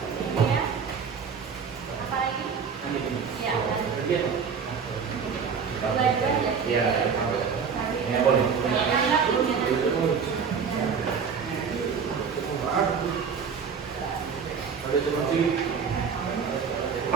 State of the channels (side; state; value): left; quieter; 6.2 dB